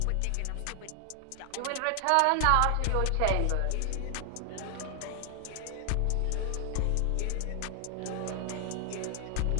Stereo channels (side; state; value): both; different; correlation 0.00